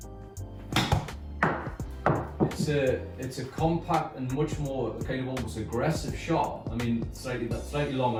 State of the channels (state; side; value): identical; both; correlation 1.00